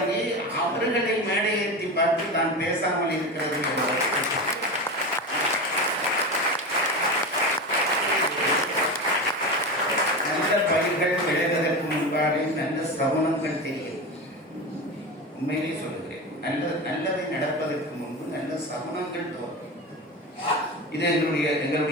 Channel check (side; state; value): both; normal; correlation 0.23